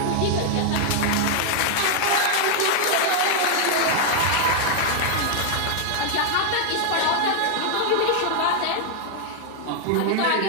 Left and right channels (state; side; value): different; both; correlation 0.00